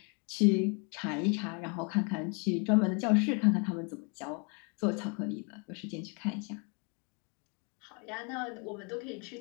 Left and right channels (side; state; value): right; quieter; 34.4 dB